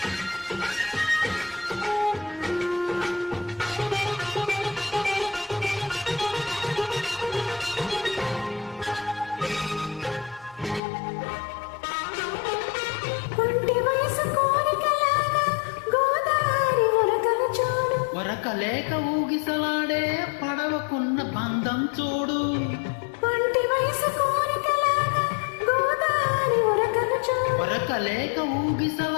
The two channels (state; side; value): drops out; right; at 10.8 s